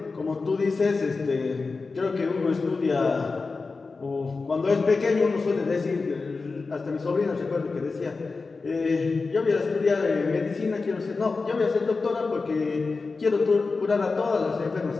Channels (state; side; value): quieter; right; 4.1 dB